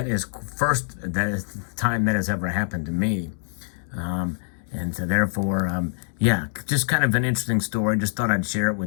is the time that has ever happened to me. And so therefore, just kind of an interesting story. Just thought I'd share it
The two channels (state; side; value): silent; right; digital silence